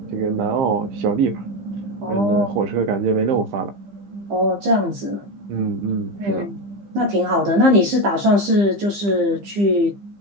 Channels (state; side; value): late; left; 15 ms